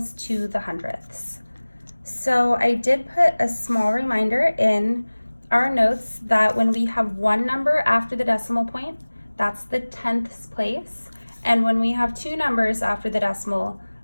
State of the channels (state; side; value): inverted; both; correlation -1.00